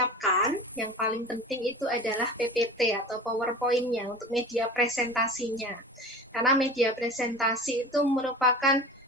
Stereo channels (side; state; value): both; normal; correlation 0.35